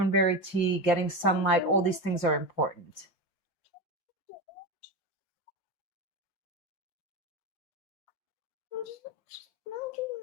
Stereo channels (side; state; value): right; late; 5.7 ms